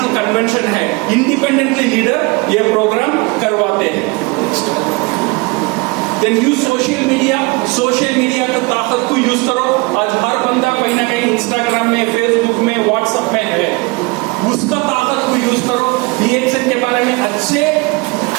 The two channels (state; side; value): quieter; left; 26.6 dB